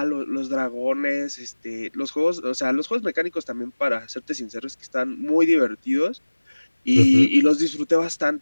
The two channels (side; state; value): both; inverted; correlation -1.00